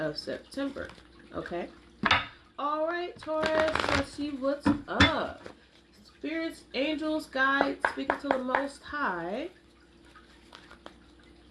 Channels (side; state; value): both; identical; correlation 1.00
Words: September. Okay? Alright, Taurus, let's see what's up. Spirits, angels, guides, speaking to the Most High.